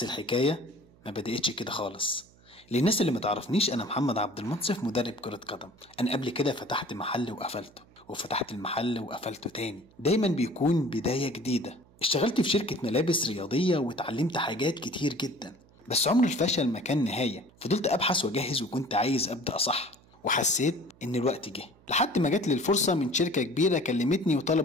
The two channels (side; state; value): right; noise; hum, 28 dB below the sound